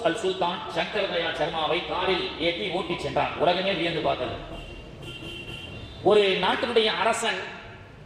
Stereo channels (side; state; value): both; identical; correlation 1.00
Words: அல் சுல்தான் சங்கர் தயாள் சர்மாவை காரில் ஏற்றி ஓட்டி சென்றார். உலகமே வியந்து பார்த்தது. ஒரு நாட்டினுடைய அரசன்